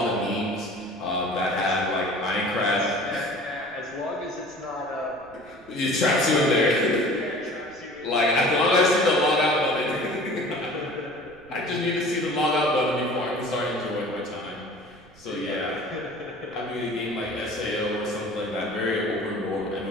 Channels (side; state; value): right; noise; rumble, 26 dB below the sound